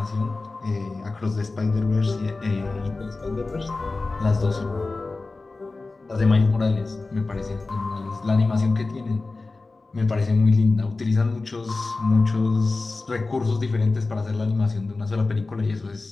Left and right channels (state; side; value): quieter; right; 3.5 dB